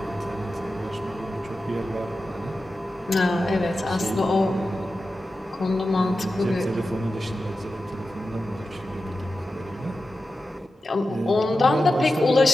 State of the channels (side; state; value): both; normal; correlation 0.92